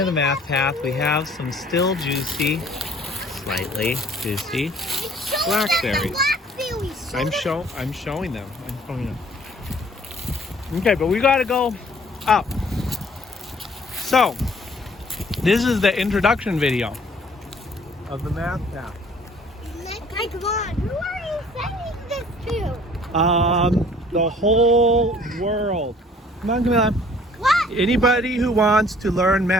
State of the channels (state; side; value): normal; both; correlation 0.55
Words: the math path, we have some still juicy, slightly juicy blackberries. I'm showing them. Okay, but we gotta go up. So, this is the introduction video of the math path. Okay, come on. Who are you sending this to? The whole world. Come on, Camilla. What? Anybody who wants to learn